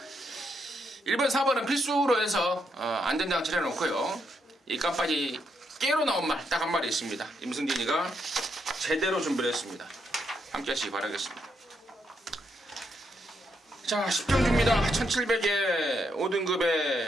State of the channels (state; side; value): normal; both; correlation 0.78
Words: 1번, 4번은 필수로 해서 안전장치를 해놓고요. 이 깜빡이 깨로 나온 말 딱 한 마리 있습니다. 임승진이가 제대로 준비를 했습니다. 함께 하시기 바라겠습니다. 자, 10경주입니다. 1700에